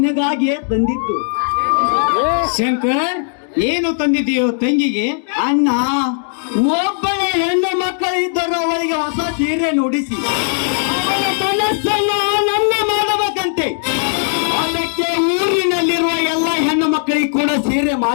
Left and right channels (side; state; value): right; silent; digital silence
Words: ತಂದಿದ್ದು. ಶಂಕರ್, ಏನು ತಂದಿದ್ದೀಯೋ ತಂಗಿಗೆ? ಅಣ್ಣ, ಒಬ್ಬಳ ಹೆಣ್ಣು ಮಕ್ಕಳು ಇದ್ದರು, ಅವಳಿಗೆ ಹೊಸ ಸೀರೆ ನುಡಿಸಿ ಅವಳ ಮನಸ್ಸನ್ನು ಆನಂದ ಮಾಡಬೇಕಂತೆ. ಅದಕ್ಕೆ ಊರಿನಲ್ಲಿರುವ ಎಲ್ಲ ಹೆಣ್ಣು ಮಕ್ಕಳಿಗೆ ಕೂಡ ಸೀರೆ